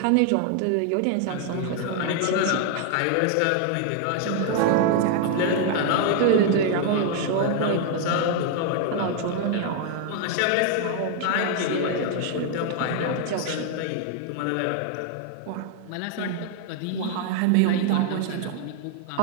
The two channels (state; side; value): different; both; correlation 0.00